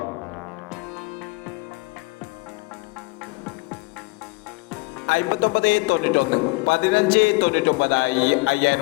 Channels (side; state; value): right; quieter; 26.1 dB